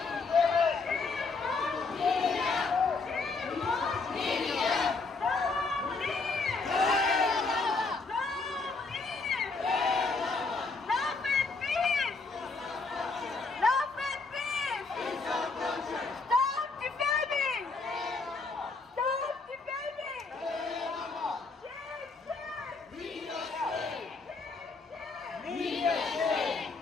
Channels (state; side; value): quieter; right; 4.1 dB